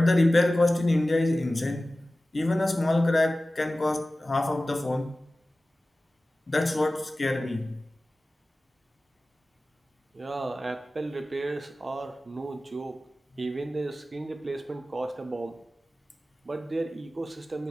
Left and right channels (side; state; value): both; normal; correlation 0.96